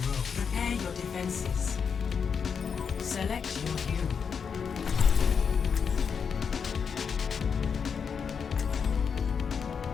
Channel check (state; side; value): quieter; right; 6.4 dB